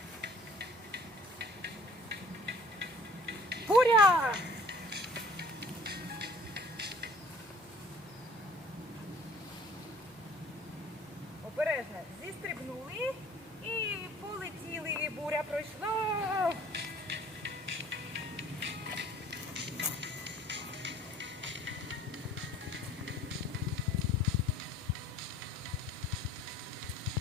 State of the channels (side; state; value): both; normal; correlation 0.53